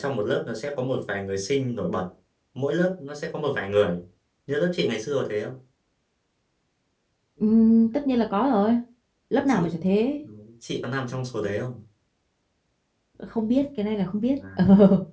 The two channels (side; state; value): both; identical; correlation 1.00